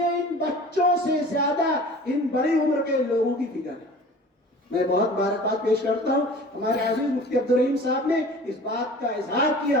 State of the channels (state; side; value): normal; both; correlation 0.43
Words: ان بچوں سے زیادہ ان بڑی عمر کے لوگوں کی فکر ہے. میں بہت مبارکباد پیش کرتا ہوں ہمارے عزیز مفتی عبدالرحیم صاحب نے اس بات کا اظہار کیا